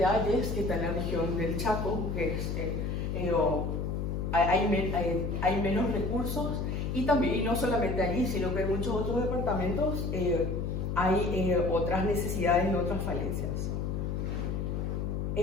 Hayes, que está en la región del Chaco, que hay menos recursos, y no solamente allí, sino que en muchos otros departamentos hay otras necesidades y otras falencias.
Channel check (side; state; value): left; noise; hum, 1 dB below the sound